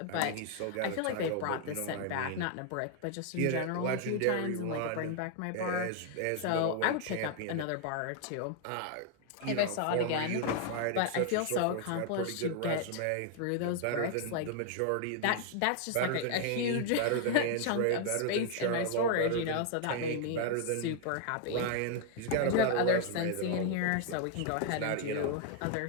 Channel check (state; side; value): different; both; correlation 0.00